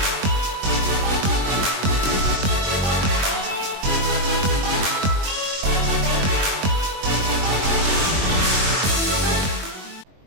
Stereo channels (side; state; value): left; late; 21 ms